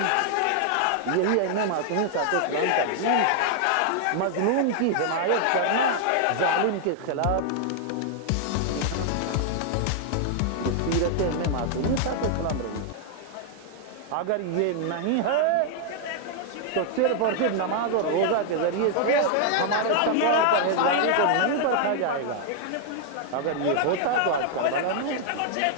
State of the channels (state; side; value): different; both; correlation 0.00